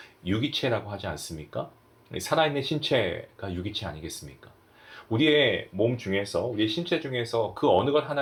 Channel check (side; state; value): both; identical; correlation 1.00